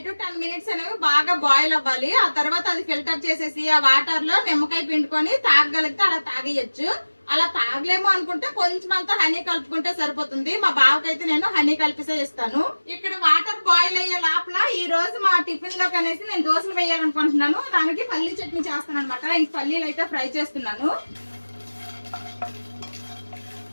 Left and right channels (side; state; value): both; inverted; correlation -1.00